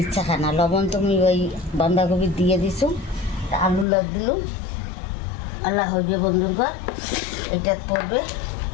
খানা, লবণ তুমি ওই বাঁধাকপি দিয়ে দিছো, আলু লাগ দিলুম, আল্লাহ হইবে বন্ধুরা। এটা পড়বে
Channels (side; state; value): right; drops out; at 3.9 s